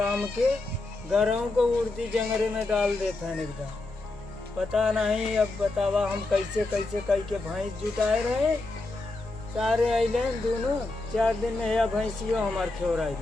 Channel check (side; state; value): right; quieter; 3.1 dB